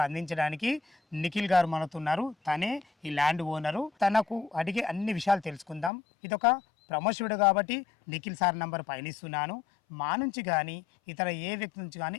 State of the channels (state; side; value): drops out; right; at 5.9 s